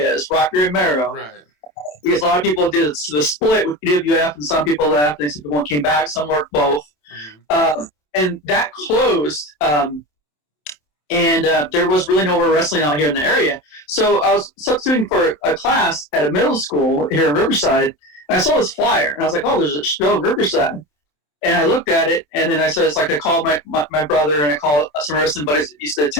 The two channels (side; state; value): right; late; 27 ms